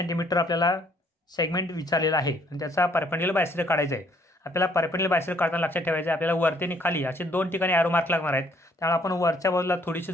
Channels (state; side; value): normal; both; correlation 0.65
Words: आपल्याला सेगमेंट विचारलेला आहे आणि त्याचा परपेंडिक्युलर बायसेक्टर काढायचा आहे. आपल्याला परपेंडिक्युलर बायसेक्टर काढताना लक्षात ठेवायचं आहे आपल्याला वरती आणि खाली असे 2 ठिकाणी ॲरो मार्क लागणार आहेत. त्यामुळे आपण वरच्या बाजूला थोडीशी